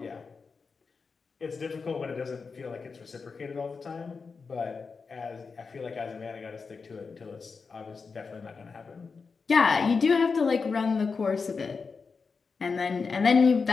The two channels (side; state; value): right; quieter; 4.9 dB